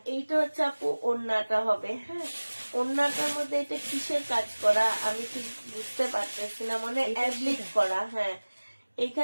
এইটা হচ্ছে আপু ওড়নাটা হবে। হ্যাঁ, ওড়নাটার মধ্যে এটা কিসের কাজ করা আমি ঠিক বুঝতে পারতেছি না, মানে অ্যাবলিক করা। হ্যাঁ,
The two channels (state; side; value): inverted; both; correlation -1.00